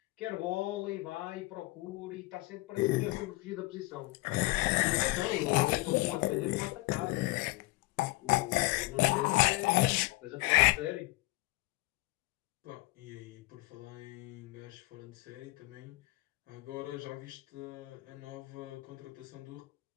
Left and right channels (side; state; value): right; quieter; 21.3 dB